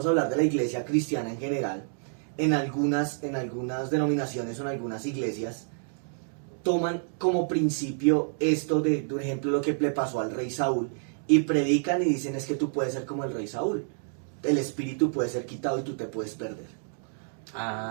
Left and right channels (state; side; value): silent; left; digital silence